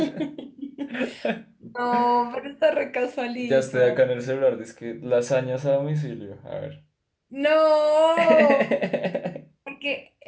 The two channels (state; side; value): identical; both; correlation 1.00